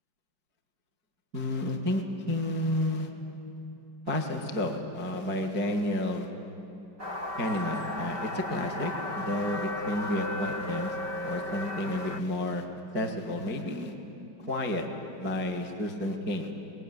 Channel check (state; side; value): late; left; 5.1 ms